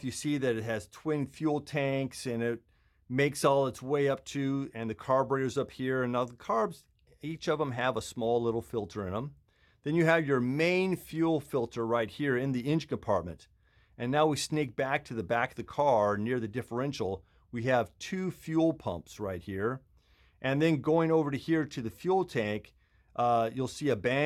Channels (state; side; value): identical; both; correlation 1.00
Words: you see that it has twin fuel tanks and it makes all its way up to, and the carburetor's up here. And now the carbs, each of them have a small little filter in them. Then you have your main fuel filter right here in the engine compartment. And now we sneak back to the back of the car near the differential. We have two fuel pumps right here. And then going over to here to the fuel tank, you'll see a